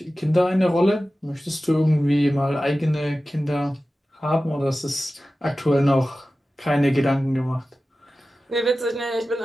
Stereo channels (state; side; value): normal; both; correlation 0.95